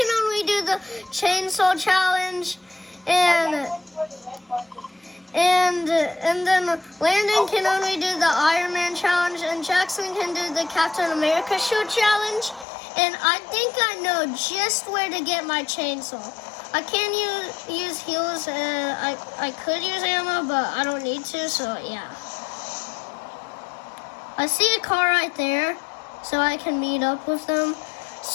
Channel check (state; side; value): drops out; right; at 12.7 s